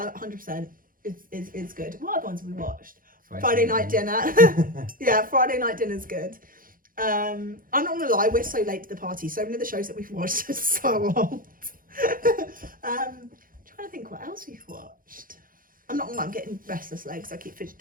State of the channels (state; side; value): late; left; 0.41 ms